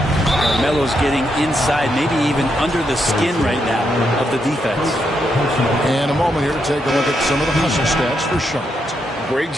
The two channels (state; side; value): normal; both; correlation 0.80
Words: Carmelo's getting inside, maybe even under the skin right now of the defense. And a moment here to take a look at some of the hustle stats for Charlotte. Great